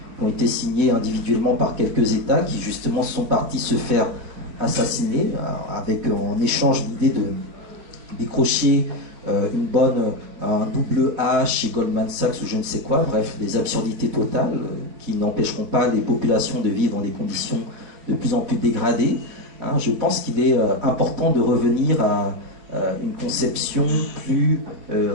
qui ont été signés individuellement par quelques États qui justement sont partis se faire assassiner avec en échange l'idée de décrocher un double A chez Goldman Sachs ou je ne sais quoi, bref, des absurdités totales qui n'empêcheront pas les populations de vivre dans des conditions de plus en plus dégradées. Je pense qu'il est important de revenir à une conception plus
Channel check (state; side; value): late; left; 4.4 ms